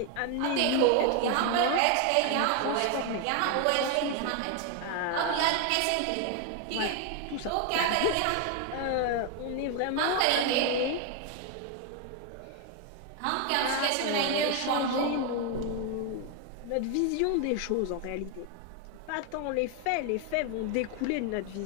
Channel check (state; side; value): different; both; correlation 0.01